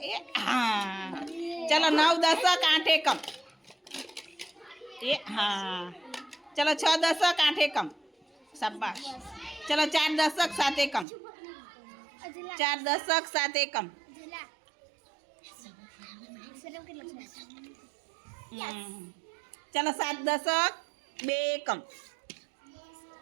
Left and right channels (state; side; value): drops out; left; at 11.1 s